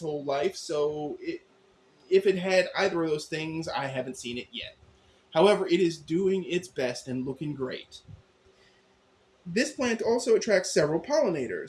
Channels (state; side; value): identical; both; correlation 1.00